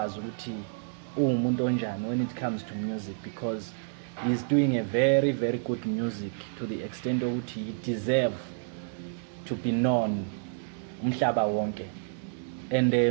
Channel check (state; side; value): silent; left; digital silence